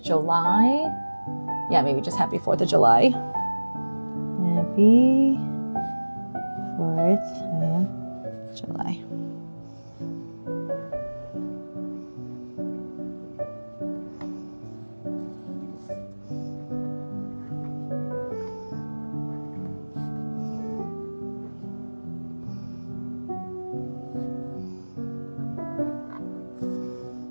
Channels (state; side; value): inverted; both; correlation -1.00